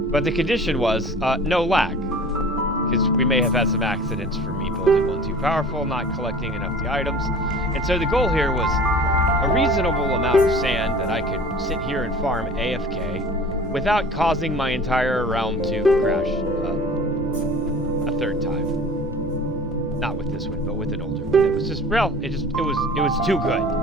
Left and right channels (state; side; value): normal; both; correlation 0.43